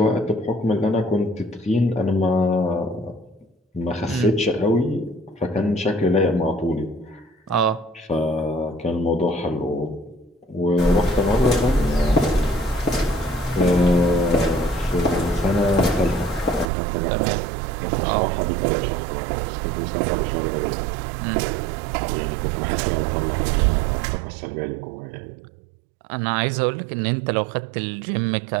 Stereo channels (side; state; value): left; drops out; at 16.7 s